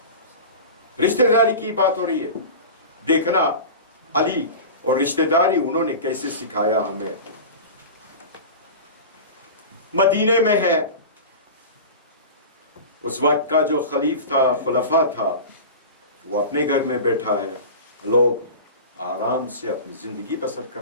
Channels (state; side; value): inverted; both; correlation -0.31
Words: رشتہ داری کی بات ہو رہی ہے، دیکھنا علی اور رشتہ داری انہوں نے کیسے سکھایا ہمیں۔ مدینے میں ہے، اس وقت کا جو خلیف تھا، خلفاء تھا، وہ اپنے گھر میں بیٹھا ہے، لوگ آرام سے اپنی زندگی بسر